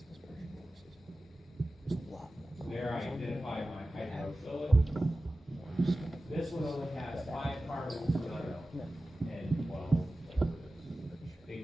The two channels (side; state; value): both; normal; correlation 0.95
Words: So there I identify my hydrophilic. This one only has 5 carbons and 12.